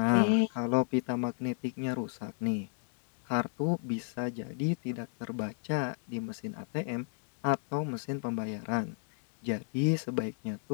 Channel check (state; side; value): silent; right; 56 dB below the other